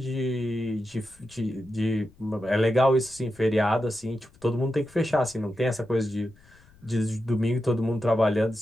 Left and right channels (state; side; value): noise; left; rumble, 27 dB below the sound